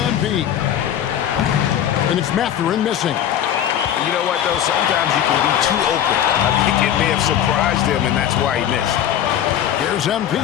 And it's Mathurin missing. You know what, though? Sometimes you can be too open. I think it may have surprised him, and that's why he missed. Here's MP.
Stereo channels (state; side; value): quieter; right; 10.3 dB